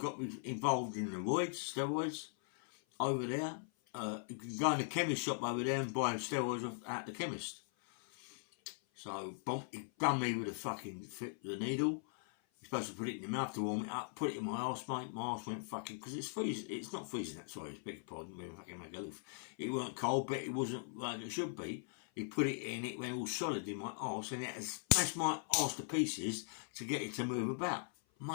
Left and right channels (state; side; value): silent; right; 51 dB below the other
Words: got me involved in the steroids over there. You can go in the chemist shop over there and buy steroids at the chemist. So he done me with the needle. You're supposed to put it in your mouth to warm it up, put it in my arse, mate. My arse went fucking, because it's freezing. It's not freezing that, sorry, beg your pardon, we fucking make a loaf. It weren't cold, but it wasn't like it should be. He put it in, it went all solid in my arse, and it had smashed my arse to pieces to get it to move about.